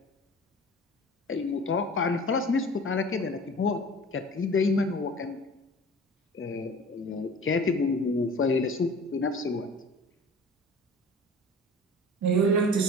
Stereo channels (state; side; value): normal; both; correlation 0.42